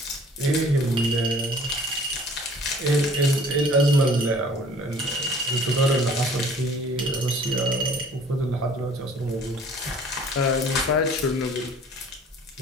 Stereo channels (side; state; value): both; normal; correlation 0.52